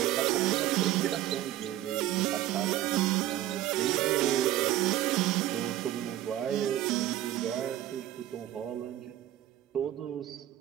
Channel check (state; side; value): quieter; left; 13.6 dB